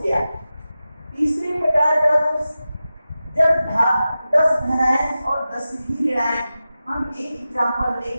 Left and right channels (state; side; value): inverted; both; correlation -0.93